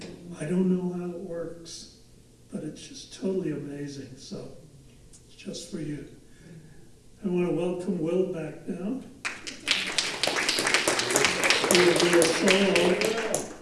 I don't know how it works, but it's just totally amazing. So it's just for you. I want to welcome Will back now. He will do a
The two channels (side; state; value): both; identical; correlation 1.00